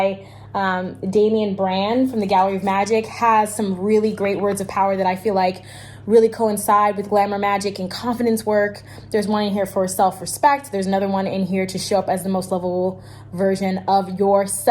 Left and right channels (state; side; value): identical; both; correlation 1.00